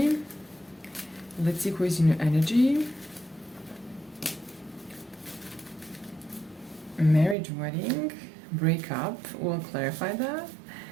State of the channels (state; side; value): drops out; left; at 7.4 s